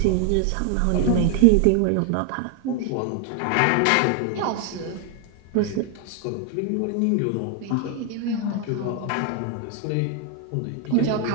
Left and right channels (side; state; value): both; different; correlation 0.00